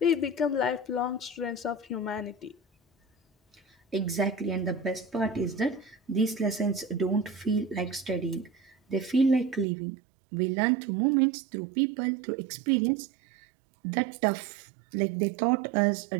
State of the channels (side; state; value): left; drops out; at 9.7 s